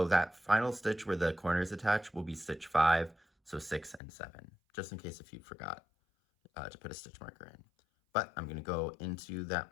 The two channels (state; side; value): drops out; right; at 4.0 s